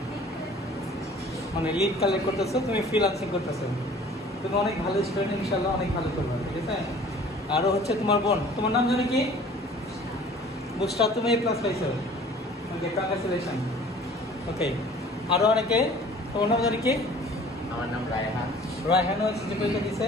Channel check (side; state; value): both; normal; correlation 0.49